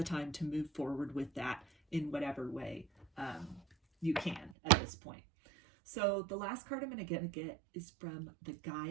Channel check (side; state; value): left; drops out; at 4.5 s